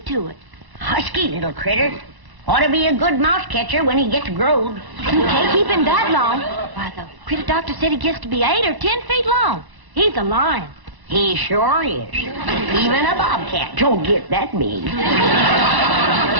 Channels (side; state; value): left; late; 1.0 ms